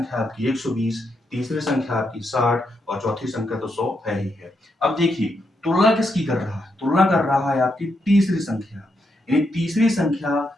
आपकी 120, तीसरी संख्या आपकी 60 और चौथी संख्या तो 100 है ही है। अब देखिए तुलना किसकी कर रहा है, तुलना कर रहा है आपकी तीसरी संख्या, यानी तीसरी संख्या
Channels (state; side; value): normal; both; correlation 0.81